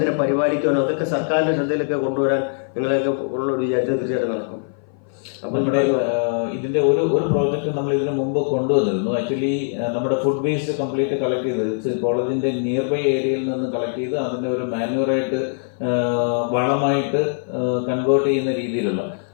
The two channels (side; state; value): right; silent; 58 dB below the other